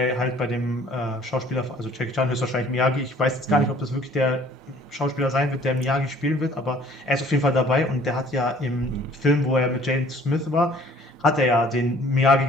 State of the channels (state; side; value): normal; both; correlation 0.54